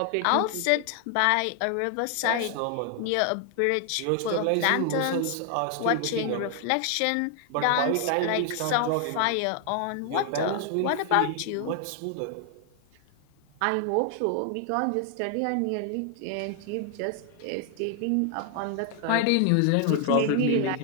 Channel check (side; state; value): both; different; correlation 0.00